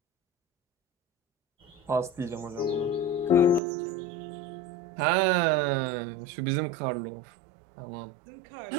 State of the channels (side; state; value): left; drops out; at 3.6 s